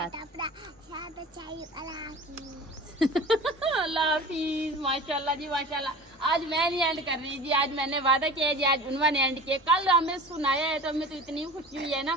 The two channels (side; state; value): both; normal; correlation 0.37